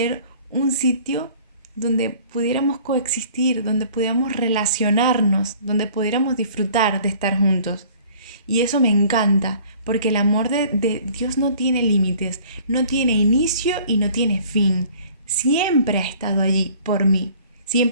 un sitio donde pudiéramos coexistir, donde pudiéramos relacionarnos, donde pudiéramos disfrutar de estar juntos. Y eso me encanta, porque el amor de Dios no tiene límites, no tiene inicio y no tiene fin. Siempre ha estado allí por mí.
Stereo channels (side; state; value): both; inverted; correlation -0.52